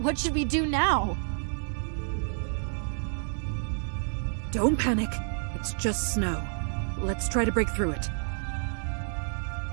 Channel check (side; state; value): left; silent; digital silence